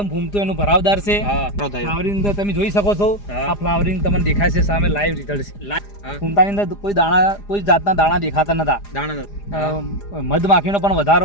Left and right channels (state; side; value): late; right; 4.9 ms